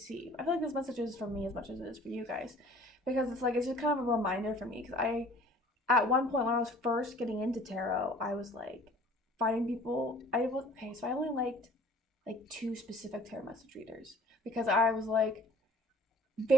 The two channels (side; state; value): both; normal; correlation 0.50